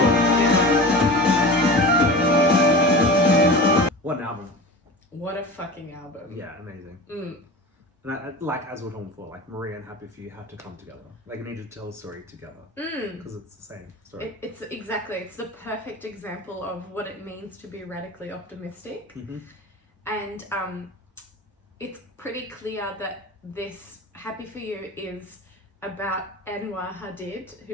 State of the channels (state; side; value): normal; both; correlation 0.33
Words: What an album. What a fucking album. Yeah, amazing. And like as we're talking before, like Maria and Happy For You had to come together. Like you need to tell a story together because it's the same story. It's the perfect example of what it means to be radically optimistic. And it's pretty clear that this Happy For You is about Anwar Hadid,